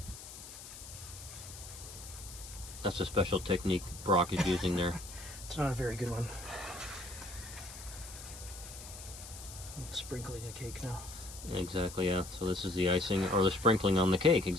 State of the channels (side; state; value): left; noise; hiss, 13 dB below the sound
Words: That's a special technique Brock is using there. It's not a very good one. I'm sprinkling a cake now. Exactly, yeah. So this is the icing, or the sprinkling on the cake,